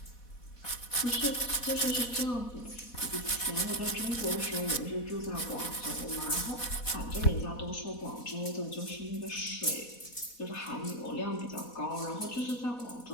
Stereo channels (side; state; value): right; late; 4.1 ms